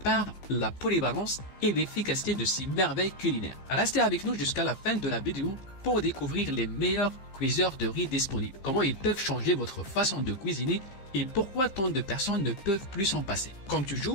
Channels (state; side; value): late; right; 15 ms